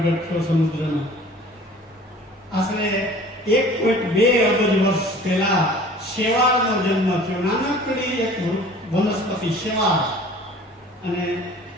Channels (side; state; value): both; normal; correlation 0.47